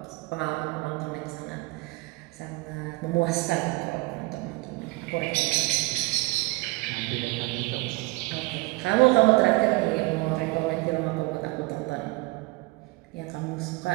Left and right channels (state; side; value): quieter; left; 23.9 dB